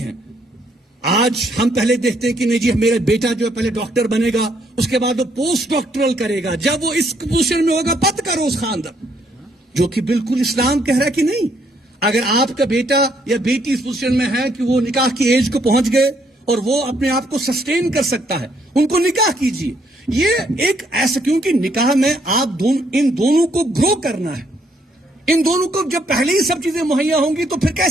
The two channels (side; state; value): both; normal; correlation 0.70